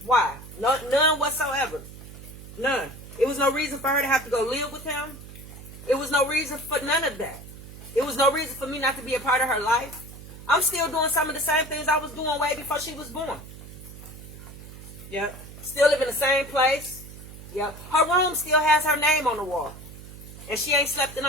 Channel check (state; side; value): noise; right; hum, 15 dB below the sound